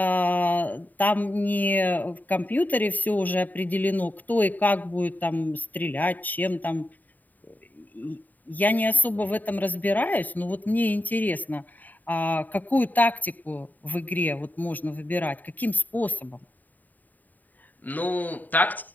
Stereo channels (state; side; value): late; right; 0.084 ms